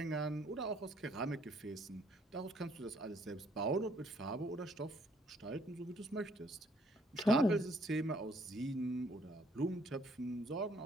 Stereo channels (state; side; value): normal; both; correlation 0.65